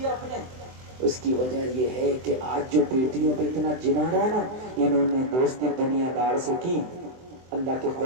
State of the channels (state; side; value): late; left; 23 ms